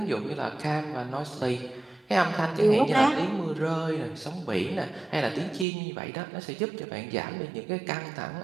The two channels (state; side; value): drops out; left; at 5.7 s